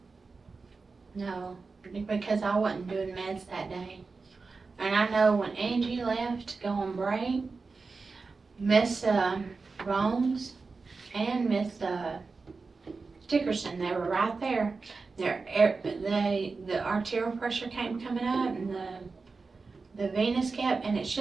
no, because I wasn't doing meds that day. And I know when Angie left to go on break, Miss Rones and Miss Dickerson, they were right there. The arterial pressure coming up, and the venous kept, and it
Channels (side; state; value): left; quieter; 4.3 dB